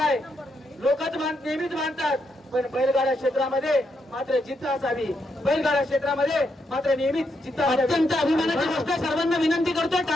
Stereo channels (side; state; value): both; normal; correlation 0.80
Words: लोकच नेहमीच मानतात, पण बैलगाडा क्षेत्रामध्ये मात्र जिद्द असावी. बैलगाडा क्षेत्रामध्ये मात्र नेहमीच जिद्द असावी. अत्यंत अभिमानाची गोष्ट. सर्वांना विनंती करतोय